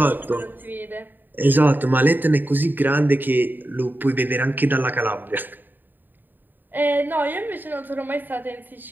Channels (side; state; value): left; late; 0.091 ms